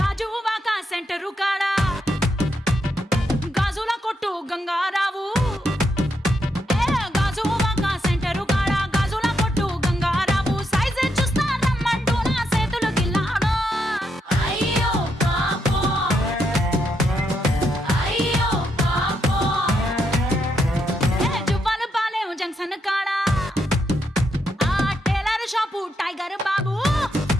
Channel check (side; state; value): both; normal; correlation 0.80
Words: సెంటరు కాడా గాజుల కొట్టు గంగారావు గాజువాక సెంటరు కాడా గాజుల కొట్టు గంగారావు సైజే చూస్తా రమ్మంటూ నా చేతులు గిల్లాడు. అయ్యో పాపో అయ్యో పాపో జువ్వాలు పాలేం జంక్షన్ కాడా ఆ టైలర్ షాపు టైగర్ బాబు.